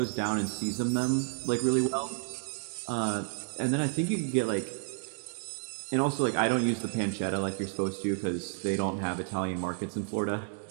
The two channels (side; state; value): left; silent; 57 dB below the other